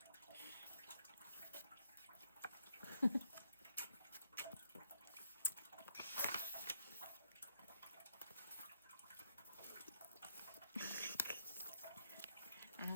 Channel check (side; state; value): both; inverted; correlation -0.74